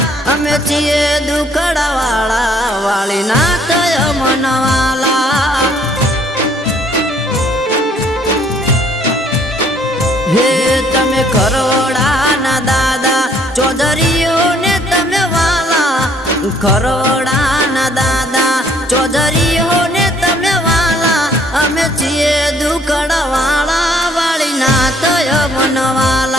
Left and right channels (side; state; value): both; normal; correlation 0.63